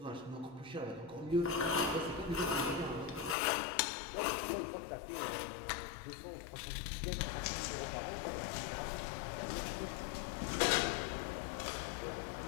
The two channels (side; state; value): right; drops out; at 3.4 s